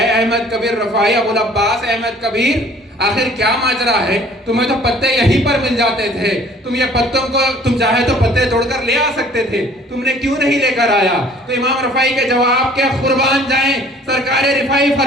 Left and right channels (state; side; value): normal; both; correlation 0.53